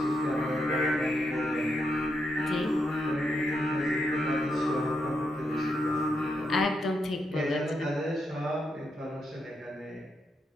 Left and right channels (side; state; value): both; normal; correlation 0.82